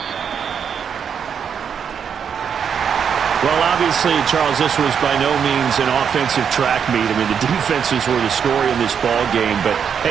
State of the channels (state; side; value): quieter; left; 7.4 dB